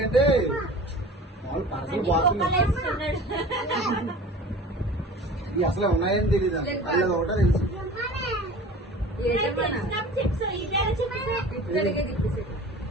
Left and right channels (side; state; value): both; normal; correlation 0.41